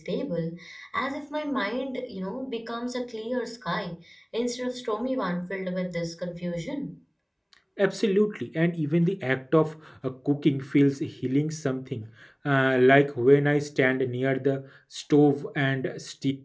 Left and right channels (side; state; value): both; identical; correlation 1.00